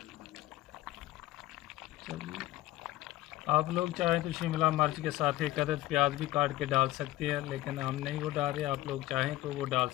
आप लोग चाहें तो शिमला मिर्च के साथ एक अदद प्याज भी काट के डाल सकते हैं, लेकिन हम नहीं वो डाल रहे। आप लोग चाहें तो वो डाल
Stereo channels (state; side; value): quieter; right; 16.3 dB